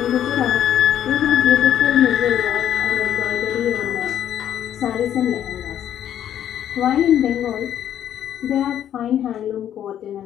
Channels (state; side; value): quieter; right; 10.5 dB